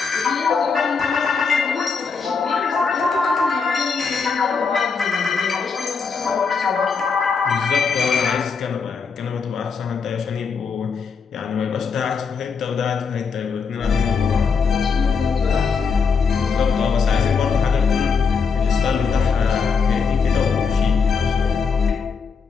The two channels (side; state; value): right; quieter; 5.4 dB